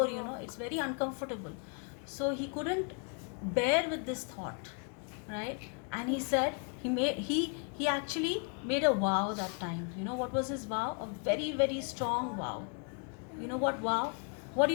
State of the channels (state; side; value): quieter; right; 37.8 dB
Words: It's very uncomfortable, so he couldn't bear with this thought, right? And he said he actually made a vow that time. What was his vow? A very, very strong vow. What vow? What do